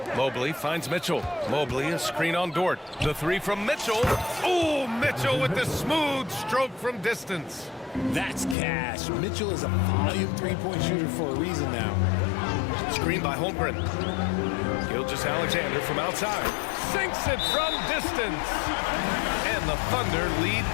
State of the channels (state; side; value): drops out; right; at 8.6 s